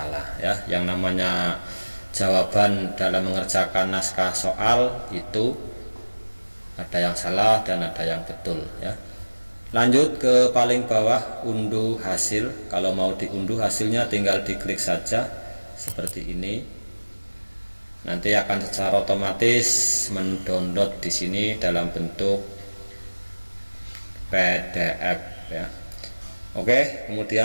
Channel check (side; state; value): both; inverted; correlation -1.00